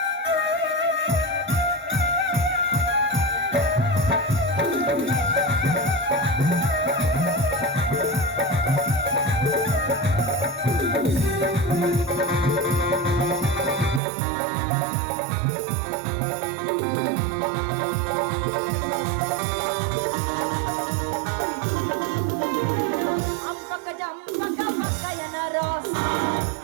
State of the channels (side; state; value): left; drops out; at 14.0 s